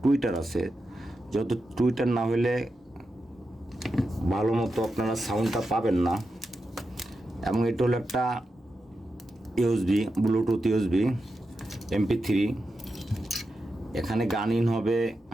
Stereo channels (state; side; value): normal; both; correlation 0.89